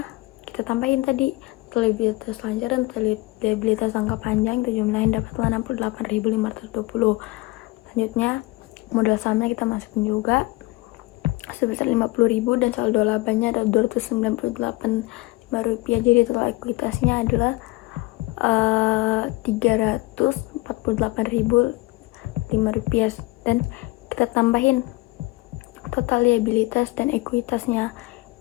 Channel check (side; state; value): right; quieter; 21.3 dB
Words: kita tambahin tadi, total liabilitas lancar dan total liabilitas jangka panjang kita jumlahin, dapatlah 68.520. Selanjutnya modal sahamnya kita masukin juga sebesar 50.000 dan saldo labanya ada 298.5 rupiah. Jadi total ekuitasnya adalah 348.005 rupiah, dan kita tambahin total liabilitas dan ekuitasnya